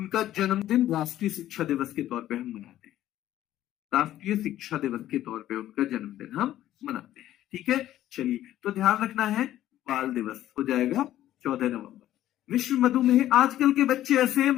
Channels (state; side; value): quieter; right; 13.1 dB